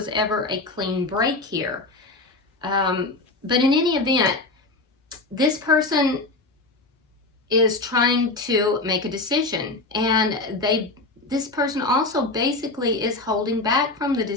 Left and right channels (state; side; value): quieter; right; 3.2 dB